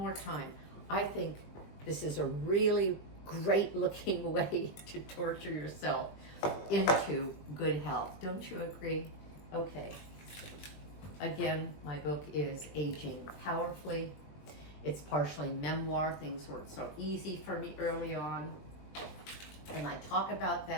time, I think this is a really great looking way to torture yourself into good health. Don't you agree? Okay. Again, my book is Aging Powerfully. It's partially memoir. Things weren't so easy for me early on. And I talk about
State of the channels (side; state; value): right; late; 20 ms